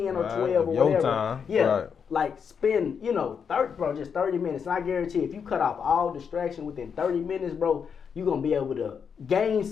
or 12 or whatever. Time. Yeah. Right. Like spend, 30 minutes. And I guarantee if you cut off all distraction within 30 minutes, bro, you're gonna be able to gain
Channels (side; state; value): right; quieter; 6.7 dB